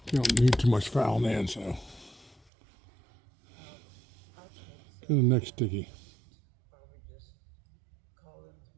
you don't need too much fouling in, so. To the next sticky. Probably just call them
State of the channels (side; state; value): left; drops out; at 2.4 s